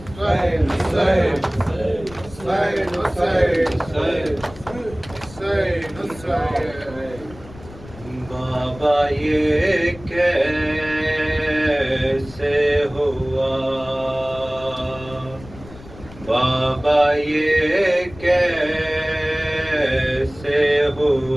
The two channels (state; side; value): noise; left; rumble, 18 dB below the sound